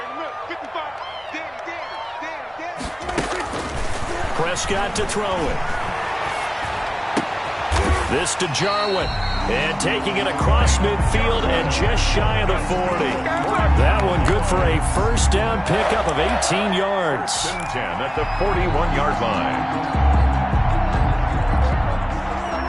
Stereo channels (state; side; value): identical; both; correlation 1.00